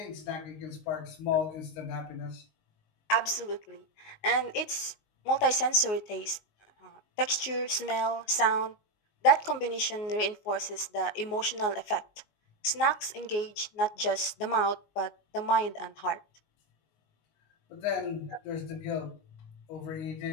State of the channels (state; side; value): late; right; 19 ms